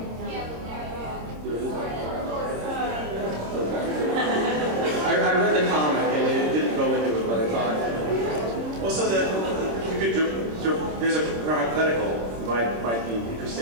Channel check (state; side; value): late; left; 26 ms